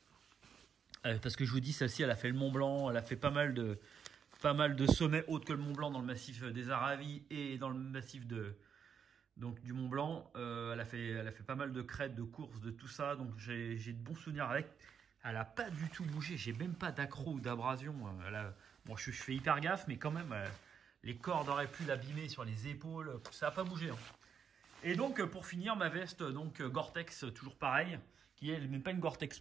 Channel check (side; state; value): left; quieter; 7.2 dB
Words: Parce que je vous dis, celle-ci, elle a fait le Mont Blanc, elle a fait pas mal de sommets autres que le Mont Blanc dans le massif des Aravis et dans le massif du Mont Blanc. Elle a fait pas mal de crêtes, de courses, de tout ça, donc j'ai de bons souvenirs avec. Elle n'a pas du tout bougé, j'ai même pas d'accro ou d'abrasion. Bon, je fais hyper gaffe, mais quand même, les cordes auraient pu l'abîmer sur les épaules, ça n'a pas bougé. Hein. Et donc, pour finir, ma veste, donc Gore-Tex, toujours pareil, qui est même pas une Gore-Tex